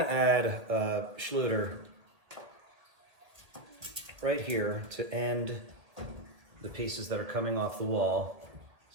add a Schluter right here to end the pieces that are coming off the wall.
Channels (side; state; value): left; late; 1.8 ms